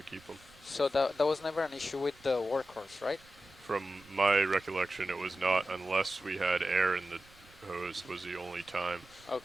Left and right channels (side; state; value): right; noise; rumble, 26 dB below the sound